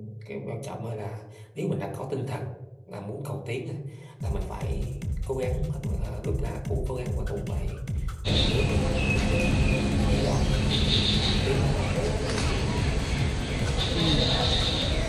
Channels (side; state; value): both; identical; correlation 1.00